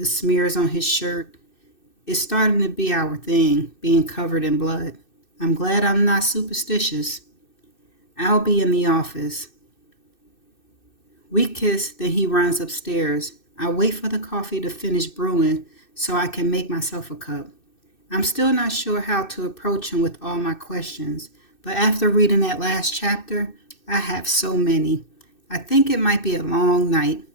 smears on his shirt. It's starting to be our thing, being covered in blood. I'm glad I'm not superstitious. I'll be in the office. We kiss, then he runs upstairs. I wait for the coffee to finish brewing so I can make myself a cup. I'm still not sure how to approach him with all my questions, but after reading that last chapter, I have so many. I think it might be a long night.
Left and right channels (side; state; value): right; late; 2.6 ms